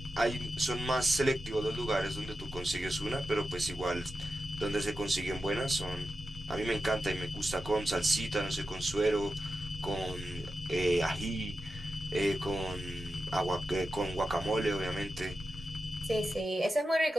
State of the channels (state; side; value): normal; both; correlation 0.90